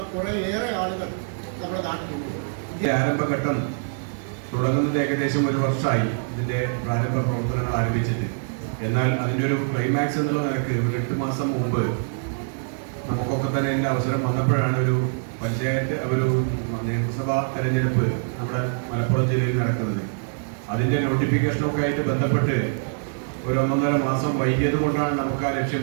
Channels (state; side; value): silent; left; 62 dB below the other